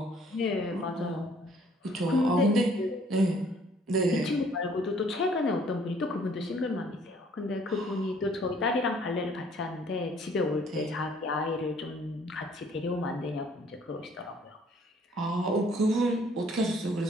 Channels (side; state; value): both; normal; correlation 0.60